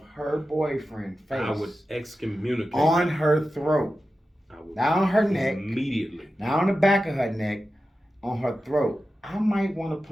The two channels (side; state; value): both; normal; correlation 0.92